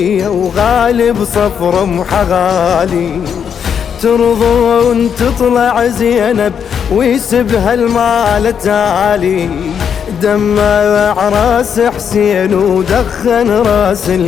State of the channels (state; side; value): quieter; right; 7.7 dB